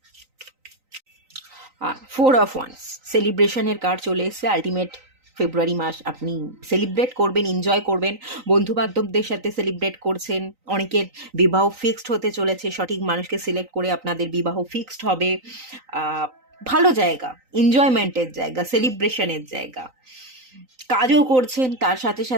ফোর অফ ওয়ান্স, সেলিব্রেশনের কার্ড চলে এসছে। আলটিমেট ফেব্রুয়ারি মাস আপনি সেলিব্রেট করবেন, এনজয় করবেন, বন্ধু বান্ধবদের সাথে সেলিব্রেট করছেন। অনেকের বিবাহ ফিক্সড হতে চলেছে, সঠিক মানুষকে সিলেক্ট করে আপনাদের বিবাহ ফিক্সড হবে। ভালো জায়গা, এনজয়মেন্টের জায়গা, সেলিব্রেশনের জায়গা। কাজও করছেন, তার সাথে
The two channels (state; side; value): late; left; 3.9 ms